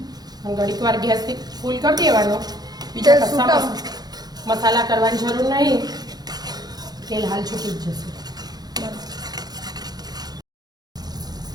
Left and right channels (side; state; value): left; late; 0.19 ms